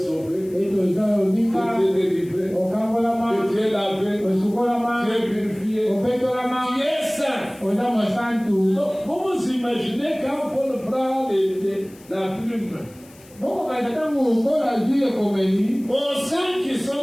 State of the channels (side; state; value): left; noise; hiss, 25 dB below the sound